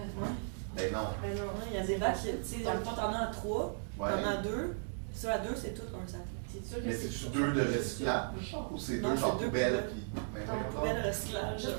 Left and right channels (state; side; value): silent; left; 54 dB below the other